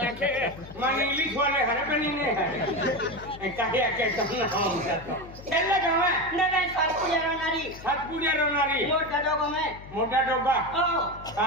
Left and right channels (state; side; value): noise; left; hum, 16 dB below the sound